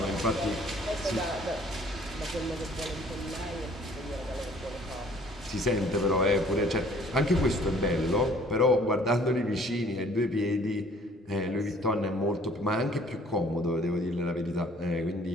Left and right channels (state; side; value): normal; both; correlation 0.55